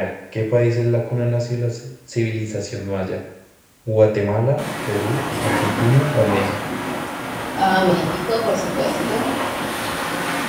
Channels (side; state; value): both; identical; correlation 1.00